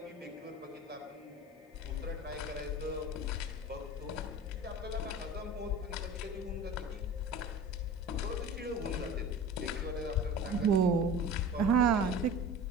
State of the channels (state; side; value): normal; both; correlation 0.36